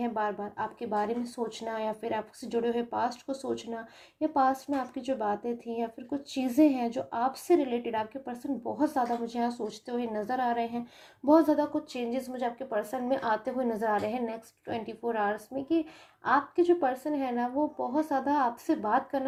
बार बार आपके बारे में सोचना, या फिर आपसे जुड़े हुए पास्ट को सोचना, या पास्ट में आपकी जो बातें थी, या फिर कुछ चीज़ें हैं जो आपसे रिलेटेड आपके पर्सन बहुत ज़्यादा मुझे यहाँ सोचते हुए नज़र आ रहे हैं। बहुत ज़्यादा कुछ चेंजेस मुझे आपके पर्सन में आते हुए नज़र आ रहे हैं नेक्स्ट 24 आवर्स में, कि आपके जो पर्सन है ना वो बहुत ज़्यादा आपसे बात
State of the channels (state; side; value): identical; both; correlation 1.00